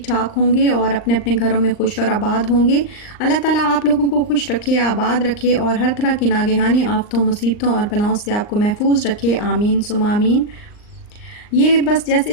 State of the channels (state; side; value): late; right; 39 ms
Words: ठाक होंगे और अपने अपने घरों में खुश और आबाद होंगे। अल्लाह ताला आप लोगों को खुश रखे, आबाद रखे और हर तरह की नागहानी आफतों, मुसीबतों और बलाओं से आपको महफूज रखे। आमीन सुम्मा आमीन। ये बस